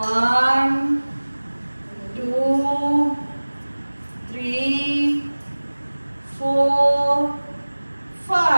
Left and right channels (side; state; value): both; inverted; correlation -1.00